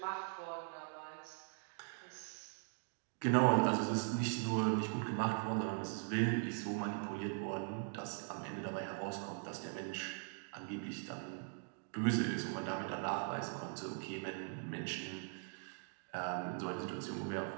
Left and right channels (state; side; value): silent; left; 50 dB below the other